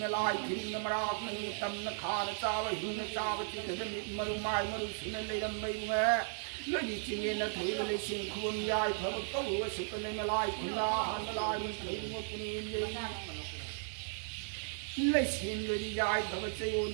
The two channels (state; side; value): silent; left; 54 dB below the other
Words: alive killing the Marak Tam the car the tower Huna Tower the Marumai Marus and later Maywear Lady Chingin at Hillary Sing Khuvamda Purple was super alive Kula and the line trading up in Lacing Lady Yai